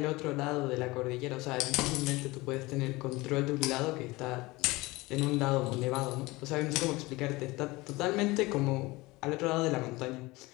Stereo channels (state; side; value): quieter; right; 21.6 dB